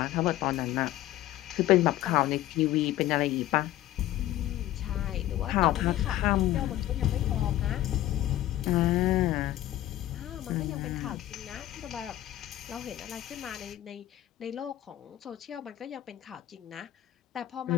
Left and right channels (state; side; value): quieter; right; 14.2 dB